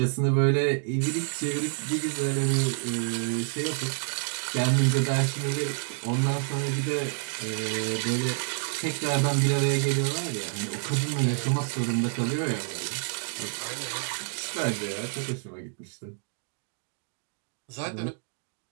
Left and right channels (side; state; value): left; silent; digital silence